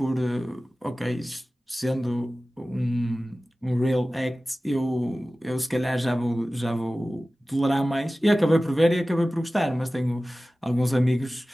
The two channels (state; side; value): normal; both; correlation 0.96